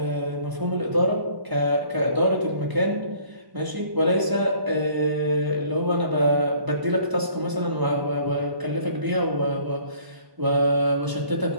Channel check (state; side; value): late; left; 1.0 ms